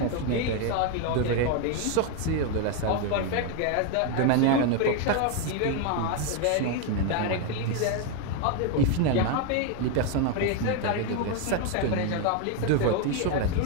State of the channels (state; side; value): different; both; correlation 0.01